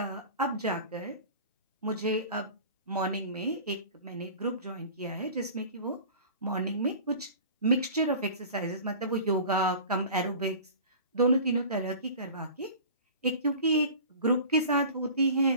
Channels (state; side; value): inverted; both; correlation -0.40